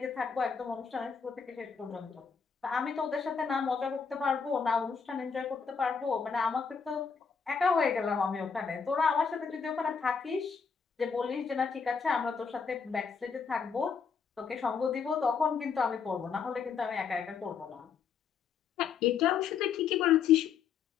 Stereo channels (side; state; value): right; quieter; 6.1 dB